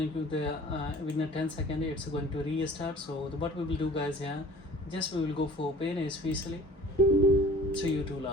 to the within 10 seconds it's going to restart. So what we will do, guys, here just we will go for open especially through tool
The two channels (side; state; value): both; normal; correlation 0.47